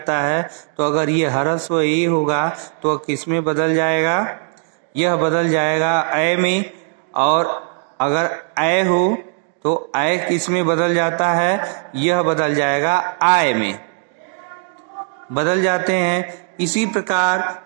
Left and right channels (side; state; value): left; silent; digital silence